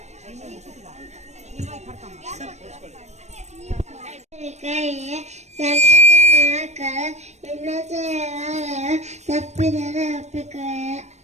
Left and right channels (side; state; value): left; late; 0.33 ms